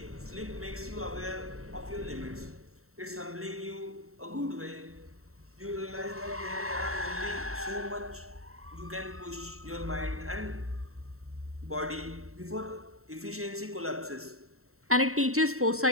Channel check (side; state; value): left; late; 0.63 ms